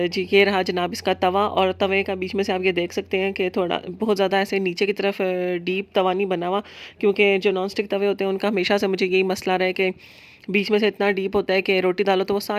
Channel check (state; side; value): identical; both; correlation 1.00